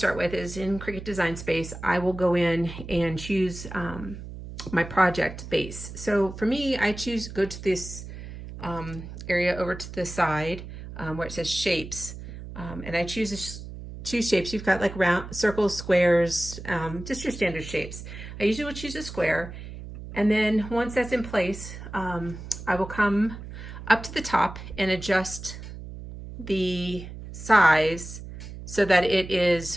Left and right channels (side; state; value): right; noise; hum, 11 dB below the sound